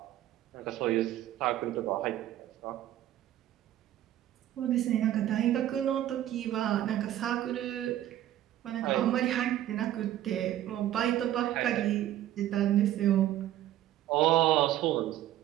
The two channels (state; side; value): quieter; left; 12.9 dB